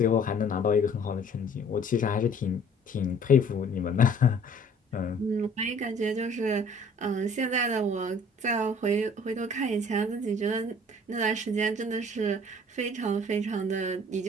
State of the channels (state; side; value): normal; both; correlation 0.53